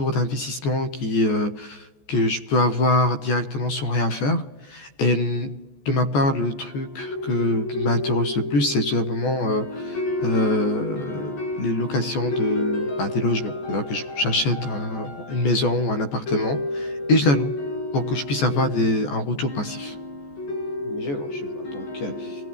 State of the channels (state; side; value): late; right; 14 ms